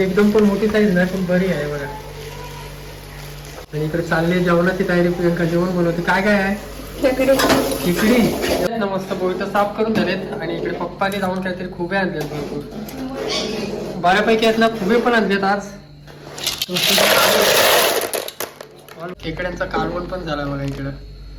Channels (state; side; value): identical; both; correlation 1.00